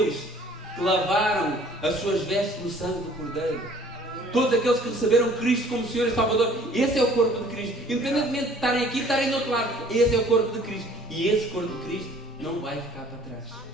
que lavaram as suas vestes no sangue do Cordeiro, todos aqueles que receberam Cristo como Senhor e Salvador, esse é o corpo de Cristo. Independentemente de estarem aqui, estarem do outro lado, esse é o corpo de Cristo. E esse corpo de Cristo não vai ficar para trás.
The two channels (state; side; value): normal; both; correlation 0.54